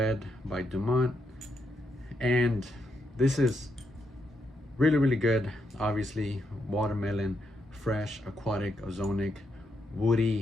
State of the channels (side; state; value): both; normal; correlation 0.80